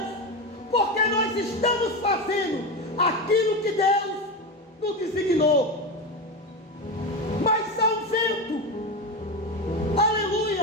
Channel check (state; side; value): normal; both; correlation 0.18